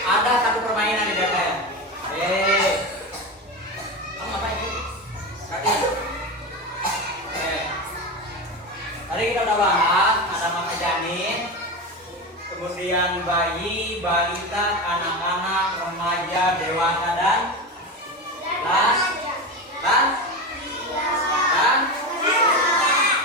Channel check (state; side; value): normal; both; correlation 0.21